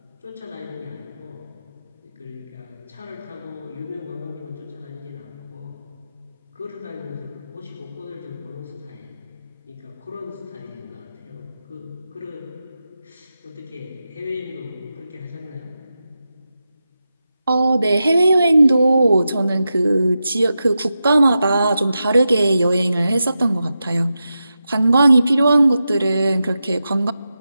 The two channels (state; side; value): inverted; both; correlation -0.90